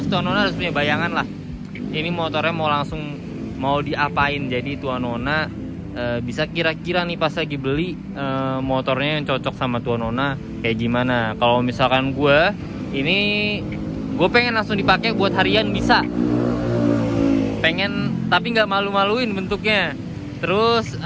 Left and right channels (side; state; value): both; identical; correlation 1.00